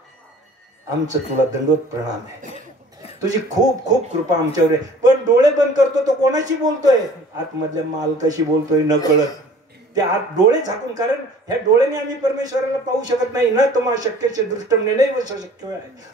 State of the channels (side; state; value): both; normal; correlation 0.49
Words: आमचं तुला दंडवत प्रणाम आहे. तुझी खूप खूप कृपा आमच्यावर आहे. पण डोळे बंद करतो तो कोणाशी बोलतोय? आतमधल्या मालकाशी बोलतोय न कळत. ते आत डोळे झाकून. कारण ह्या डोळ्याने आम्ही परमेश्वराला पाहू शकत नाही ना. तुम्हा शक्यचे दृष्टम नैव शक्य आहे.